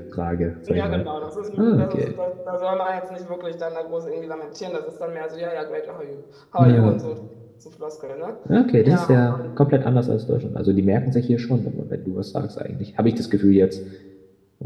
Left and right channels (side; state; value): both; identical; correlation 1.00